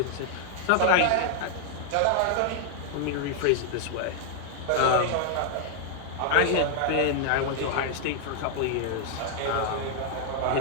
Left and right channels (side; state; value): both; different; correlation 0.00